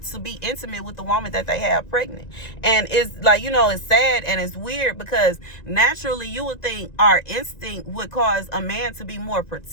to be intimate with the woman that they have pregnant. And it's like, you know, it's sad and it's weird, because naturally you would think our instinct would cause a man to be more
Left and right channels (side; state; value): right; late; 1.9 ms